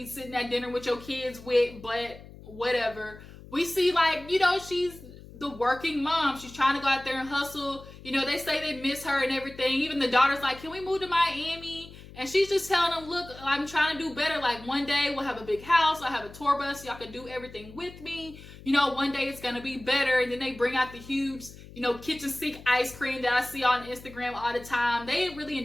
sitting at dinner with your kids with, but whatever. We see, like, you know, she's the working mom. She's trying to go out there and hustle. You know, they say they miss her and everything. Even the daughter's like, can we move to Miami? And she's just telling them, look, I'm trying to do better. Like, one day we'll have a big house. I'll have a tour bus. Y'all can do everything with me. You know, one day it's going to be better. And then they bring out the huge, you know, kitchen sink ice cream that I see on Instagram all the time. They really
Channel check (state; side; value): noise; left; hum, 18 dB below the sound